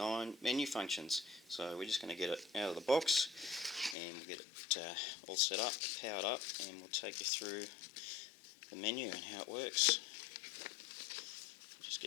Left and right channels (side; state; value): right; drops out; at 4.0 s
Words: menu functions. So we're just going to get it out of the box and we'll get it all set up, powered up, and we'll take you through the menu and how it works. Just